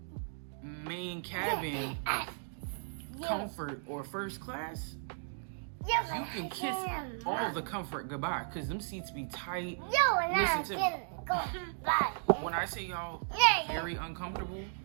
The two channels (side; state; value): left; silent; digital silence